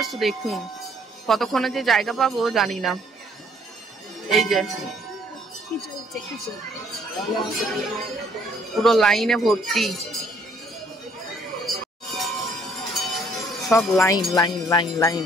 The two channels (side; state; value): both; normal; correlation 0.64